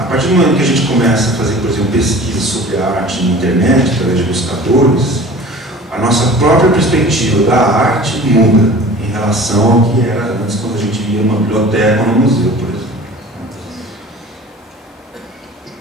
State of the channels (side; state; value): both; normal; correlation 0.43